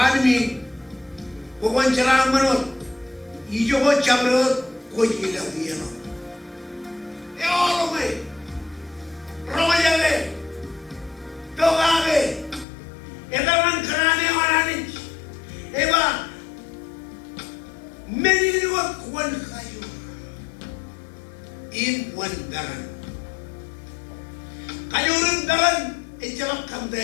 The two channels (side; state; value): right; drops out; at 12.7 s